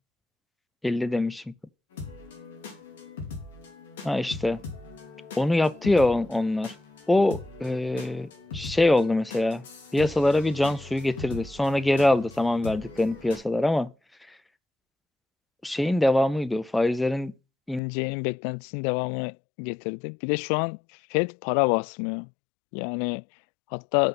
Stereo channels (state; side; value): drops out; right; at 17.8 s